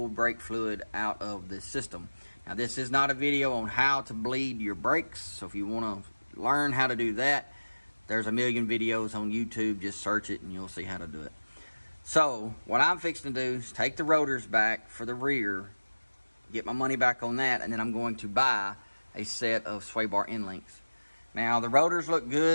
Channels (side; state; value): both; inverted; correlation -1.00